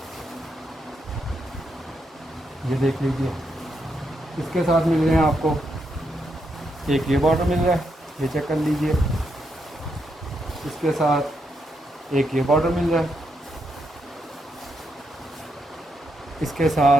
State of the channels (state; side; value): normal; both; correlation 0.81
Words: ये देख लीजिए। इसके साथ मिल रहे हैं आपको एक ये बॉर्डर मिल रहा है, ये चेक कर लीजिए। इसके साथ एक ये बॉर्डर मिल रहा है। इसके